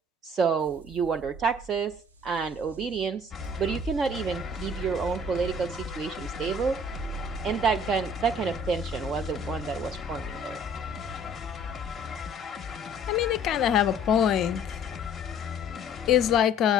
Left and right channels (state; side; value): normal; both; correlation 0.54